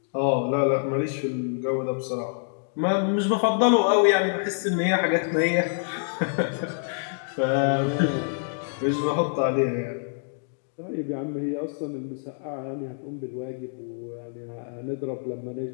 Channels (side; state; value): right; silent; digital silence